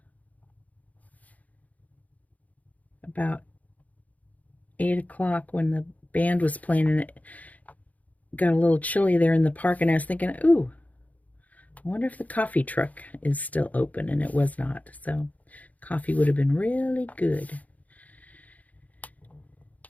about 8 o'clock when the band was playing, and it got a little chilly there in the park, and I was thinking, ooh, I wonder if the coffee truck is still open, and it was not. So coffee would have been really good.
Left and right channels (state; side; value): late; right; 0.074 ms